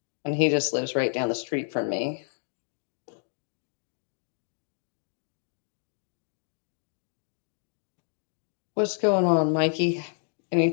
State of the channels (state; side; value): silent; right; 58 dB below the other